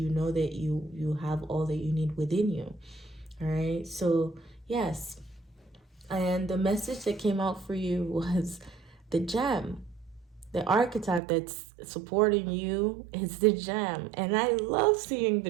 know that you have all that you need within you. All right, so yes. And the message that came out for you was the gem. The archetype that's supporting you is the gem. And I love seeing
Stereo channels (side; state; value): left; drops out; at 11.2 s